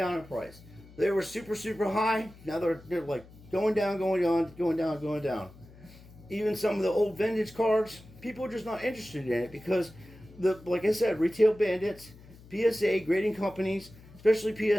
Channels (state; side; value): noise; left; hum, 21 dB below the sound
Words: in price. They were super, super high. Now they're like going down, going down, going down, going down. Even some of the old vintage cards, people are just not interested in it because, like I said, retail bandits, PSA, grading companies, especially